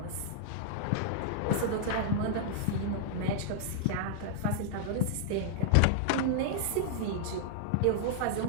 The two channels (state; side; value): different; both; correlation -0.01